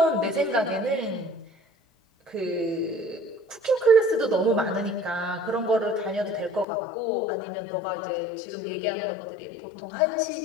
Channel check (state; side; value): drops out; right; at 6.7 s